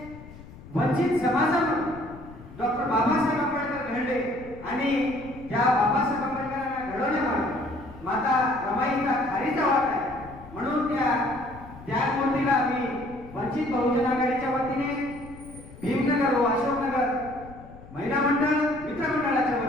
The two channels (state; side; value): noise; left; rumble, 18 dB below the sound